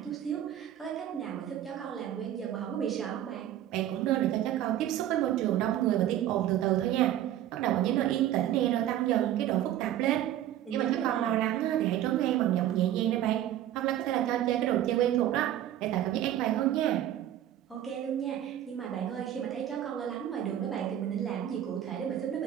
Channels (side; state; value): left; quieter; 11.9 dB